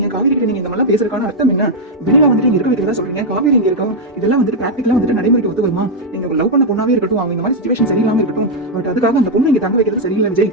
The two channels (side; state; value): both; normal; correlation -0.01